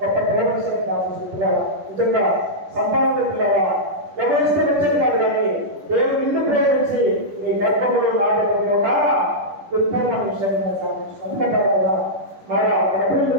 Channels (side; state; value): left; late; 10 ms